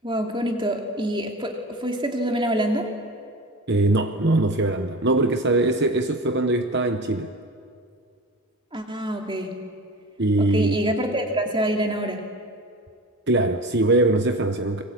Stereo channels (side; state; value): both; normal; correlation 0.33